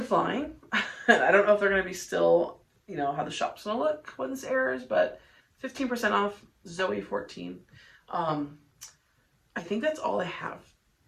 I don't know if they're going to be still, you know, how the shop's going to look when this airs, but 15% off, Zoe 14. I think that's all I have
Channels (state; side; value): identical; both; correlation 1.00